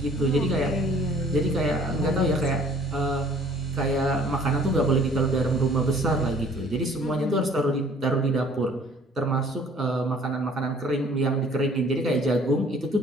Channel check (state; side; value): normal; both; correlation 0.55